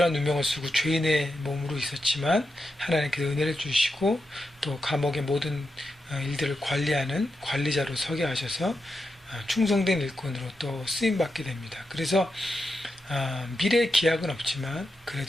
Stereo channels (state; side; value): normal; both; correlation 0.87